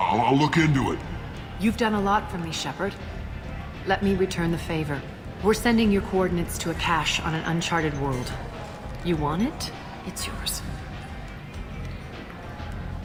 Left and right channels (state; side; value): identical; both; correlation 1.00